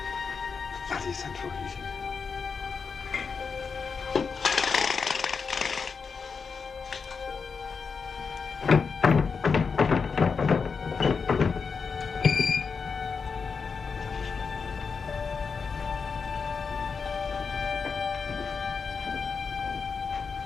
Bloody central heating.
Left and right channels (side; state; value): right; quieter; 5.4 dB